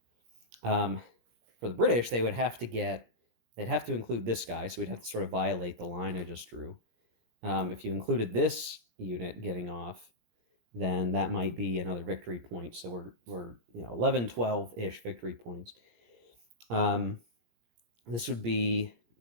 For the British, they'd have to include this guy, so we'd have to sort of violate the line I just drew. If you included this unit getting off, then that might be another victory point. So we're 11, 12-ish victory points. This would be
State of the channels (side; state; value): left; late; 17 ms